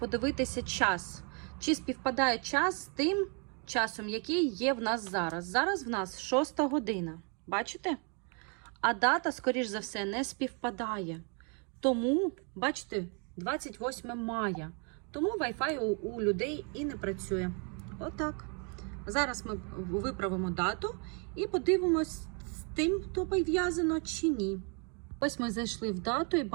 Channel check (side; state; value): left; quieter; 37.0 dB